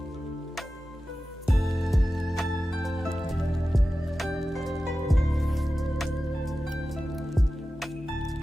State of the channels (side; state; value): both; normal; correlation 0.94